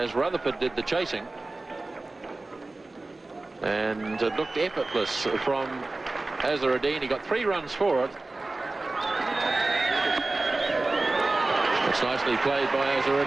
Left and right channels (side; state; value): left; quieter; 3.1 dB